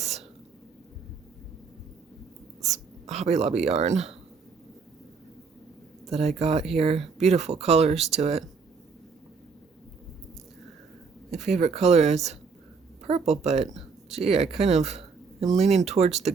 Hobby Lobby yarn that I got here. Beautiful colors to it. My favorite color is purple, but gee, I kind of am leaning towards the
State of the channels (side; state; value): left; quieter; 5.1 dB